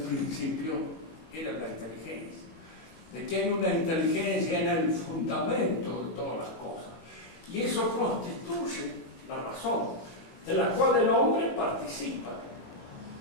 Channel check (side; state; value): right; late; 19 ms